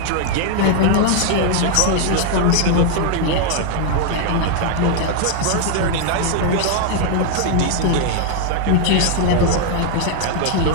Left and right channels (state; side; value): different; both; correlation 0.00